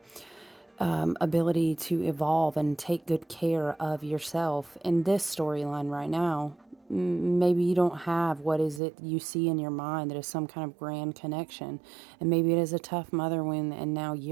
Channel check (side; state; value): left; drops out; at 8.8 s